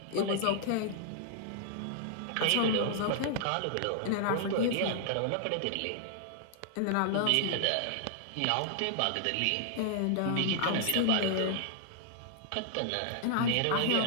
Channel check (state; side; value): different; both; correlation -0.01